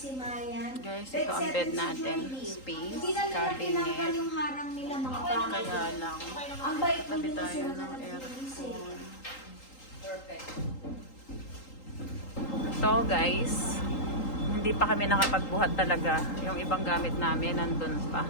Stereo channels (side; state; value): right; late; 3.8 ms